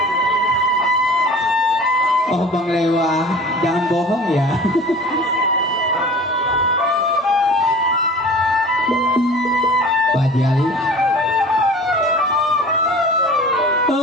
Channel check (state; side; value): normal; both; correlation 0.42